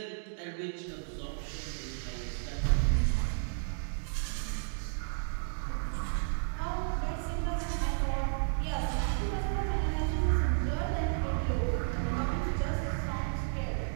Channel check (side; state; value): left; silent; digital silence